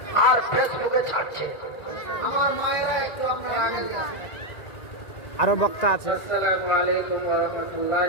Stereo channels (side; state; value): right; late; 2.4 ms